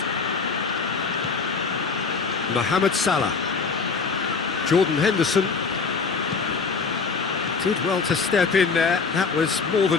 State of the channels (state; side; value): quieter; right; 5.0 dB